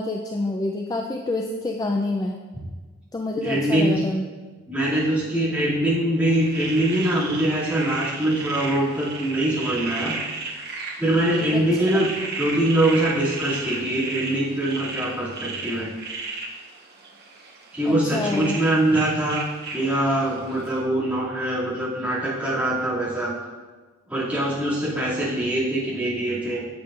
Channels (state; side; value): normal; both; correlation 0.59